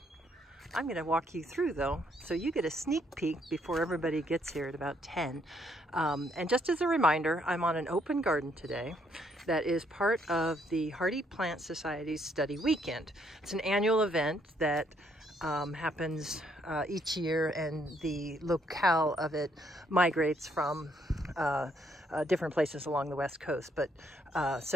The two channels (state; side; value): normal; both; correlation 0.71